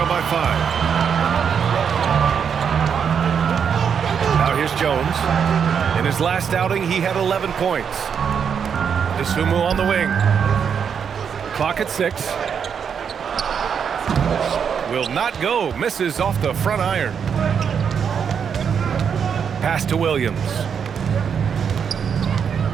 by 5. Now here's Jones. In his last outing, he had 11 points. Dosunmu on the wing. Clock at 6. Will not go. Misses off the front iron. Pass to Williams.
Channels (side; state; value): left; quieter; 7.2 dB